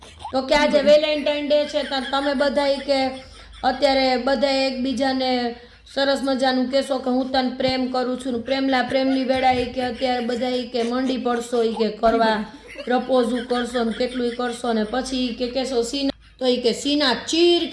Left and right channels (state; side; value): identical; both; correlation 1.00